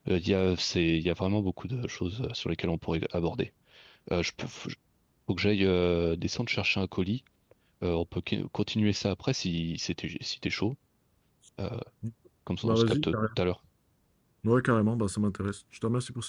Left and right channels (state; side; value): identical; both; correlation 1.00